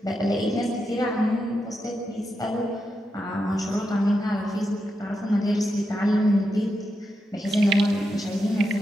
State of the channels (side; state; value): both; normal; correlation 0.86